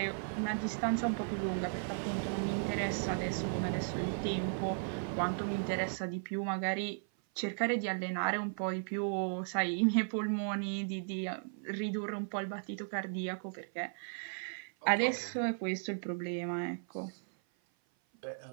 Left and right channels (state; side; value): silent; left; 54 dB below the other